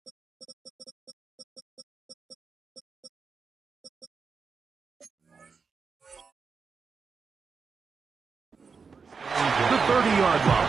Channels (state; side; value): quieter; left; 5.3 dB